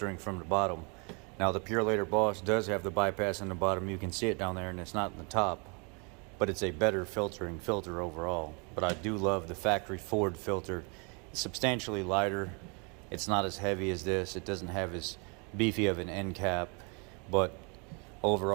from the bottom. Now the Purelator Boss does have the bypass in the bottom. You can see it down there, and it's not in the top, but it's a better filtering filter overall. But I do love the factory Ford filter. It's substantially lighter. It's not as heavy as this. It doesn't have as beefy of an end cap, but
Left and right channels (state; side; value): quieter; left; 34.0 dB